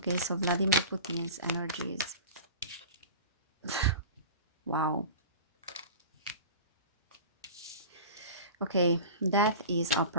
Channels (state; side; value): inverted; both; correlation -0.35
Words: so Vladimir Putin's energies. Wow. Okay, death is